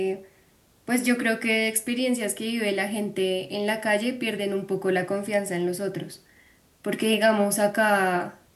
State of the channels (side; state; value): both; identical; correlation 1.00